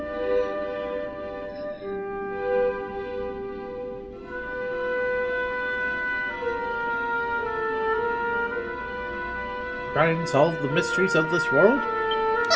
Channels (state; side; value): identical; both; correlation 1.00